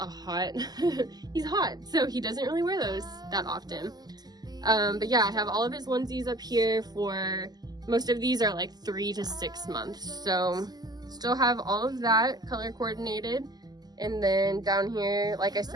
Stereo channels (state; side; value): late; left; 0.20 ms